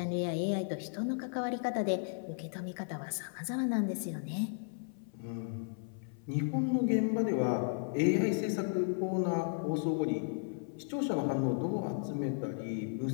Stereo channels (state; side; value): silent; right; 55 dB below the other